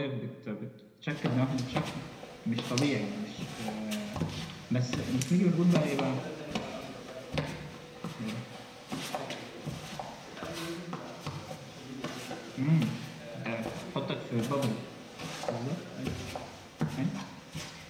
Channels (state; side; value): identical; both; correlation 1.00